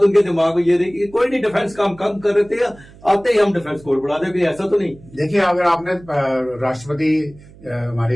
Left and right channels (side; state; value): right; noise; hum, 22 dB below the sound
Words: उनके दिमाग में ये रही कि कोई नहीं, डिफेंस काम कम कर रहे थे, आते ही हम डिफेंस कोर बढ़ा देंगे, ऐसा तो नहीं। देखिए, अगर आपने राष्ट्रपति